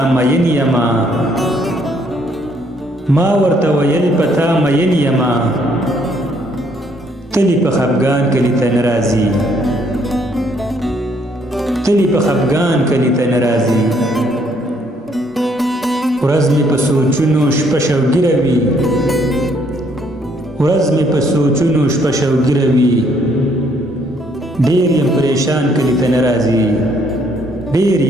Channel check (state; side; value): normal; both; correlation 0.67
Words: مین یما، ما ورته ویل پتا مین یما، تلی په خفګان کلي ته نه راځي، تلی په خفګان کلي ته نه راځي. ورځ مې په سوچونو شپه شوګیره وي، ورځ مې په سوچونو شپه شوګیره وي، ډېر یم پریشان کلي ته نه راځي، ډېر